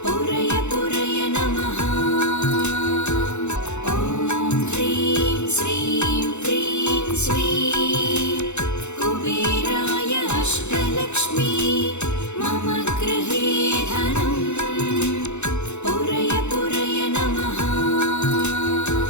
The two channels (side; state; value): right; late; 0.82 ms